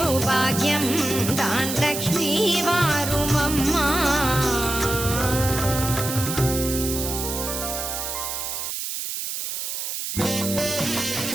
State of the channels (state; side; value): noise; right; hiss, 4 dB below the sound